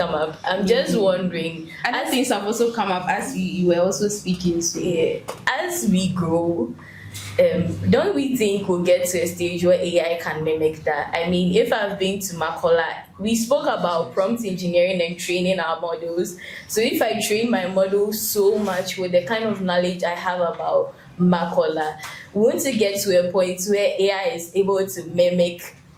up. I'm just wondering. Other things have also come up as you were also speaking. So yeah, as we grow, don't we think we'll get to a stage where AI can mimic that? I mean, if I've been to Makola, we spoke about prompt engineering and training our models. So if I train my model so much with the kind of knowledge I have about Makola, won't it get to a point where AI is able to mimic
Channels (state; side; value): identical; both; correlation 1.00